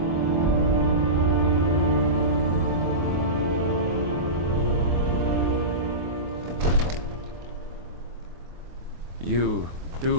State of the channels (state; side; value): late; left; 24 ms